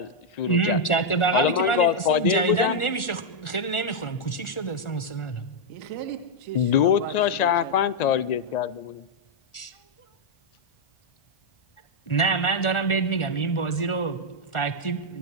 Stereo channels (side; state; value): right; late; 1.4 ms